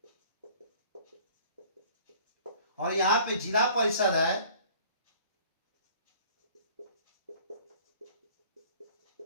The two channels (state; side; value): inverted; both; correlation -0.51